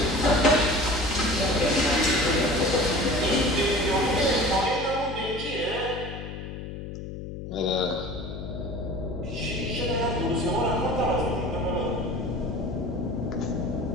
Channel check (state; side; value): noise; left; hum, 9 dB below the sound